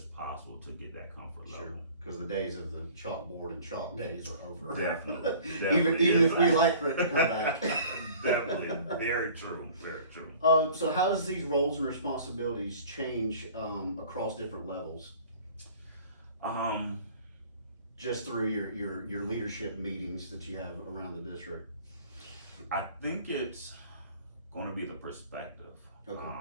possible to get that comfort level. Because the days of the chalkboard and chalk days are over. Definitely. even if we like for it to come back. Definitely. Very true. Very true. So how does these roles and responsibilities change across different levels? Just through your leadership meetings that you have around the district. I think it's going to be the perspective.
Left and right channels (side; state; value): both; inverted; correlation -0.48